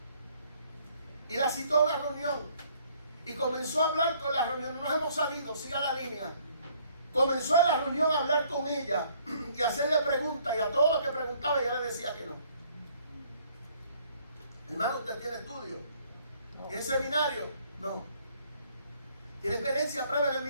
Y la citó a una reunión. Y comenzó a hablar con la reunión. No nos hemos salido, siga la línea. Comenzó en la reunión a hablar con ella y hacerle preguntas. Y a todo lo que preguntaba ella le decía que no. Hermano, ¿usted tiene estudio? ¿Tiene seminario? No. ¿Tiene experiencia prueba en el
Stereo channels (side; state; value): both; inverted; correlation -0.62